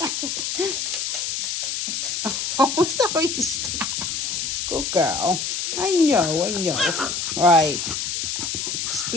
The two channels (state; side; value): noise; left; hiss, 2 dB below the sound